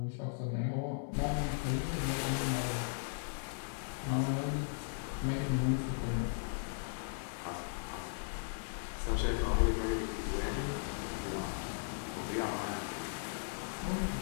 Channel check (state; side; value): silent; right; 53 dB below the other